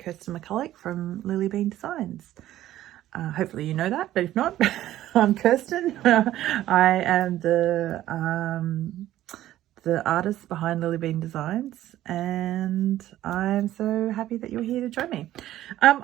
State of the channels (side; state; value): left; quieter; 13.7 dB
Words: McCulloch from LilliBean Designs. Hopefully you know that, but if not, I'm Kirsten. I am the artist behind LilliBean Designs, and I'm so happy that you're here to join me. I